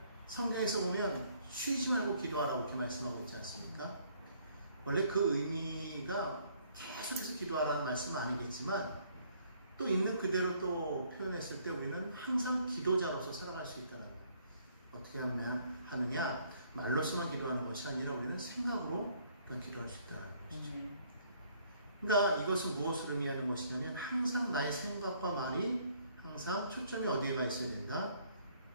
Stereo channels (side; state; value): both; inverted; correlation -0.64